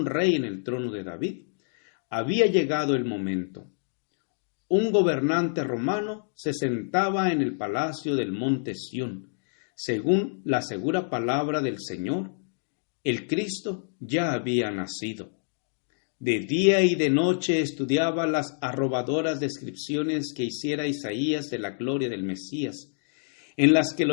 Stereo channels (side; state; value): right; silent; digital silence